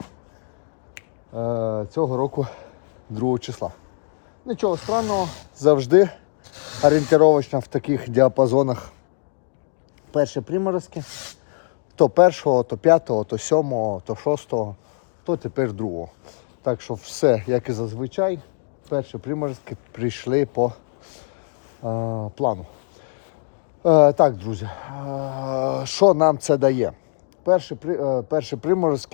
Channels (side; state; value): right; silent; digital silence